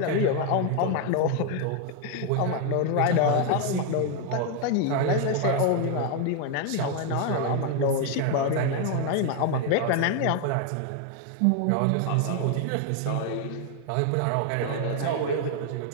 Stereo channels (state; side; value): different; both; correlation 0.00